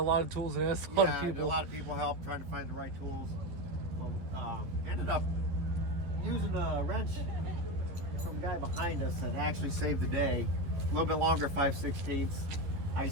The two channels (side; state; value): left; late; 11 ms